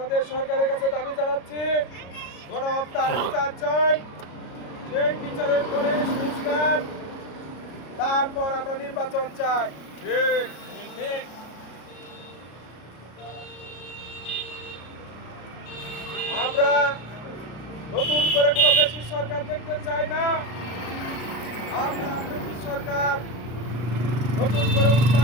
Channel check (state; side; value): late; right; 33 ms